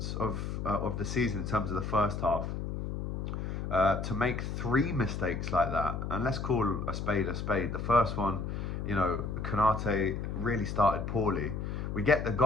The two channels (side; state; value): left; noise; hum, 4 dB below the sound